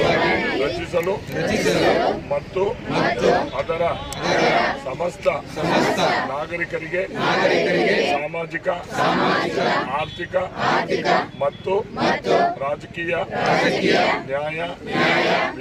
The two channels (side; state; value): both; identical; correlation 1.00